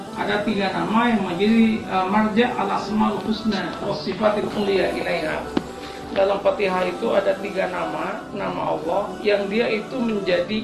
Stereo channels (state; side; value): identical; both; correlation 1.00